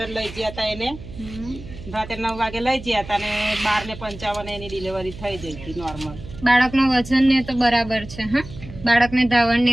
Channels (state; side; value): noise; right; hum, 14 dB below the sound